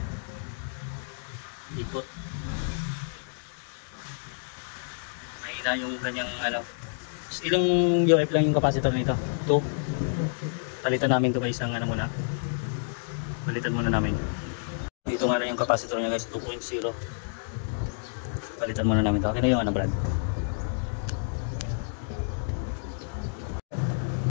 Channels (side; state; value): right; silent; digital silence